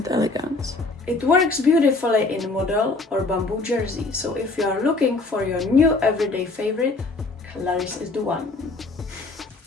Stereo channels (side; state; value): right; quieter; 3.4 dB